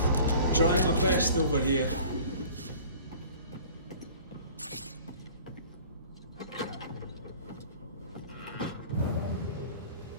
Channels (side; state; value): both; inverted; correlation -0.46